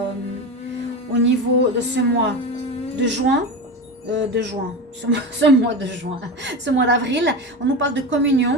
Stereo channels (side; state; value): both; normal; correlation 0.23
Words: au niveau de ce mois de juin. Ce mois de juin, ce mois d'avril, on nous parle de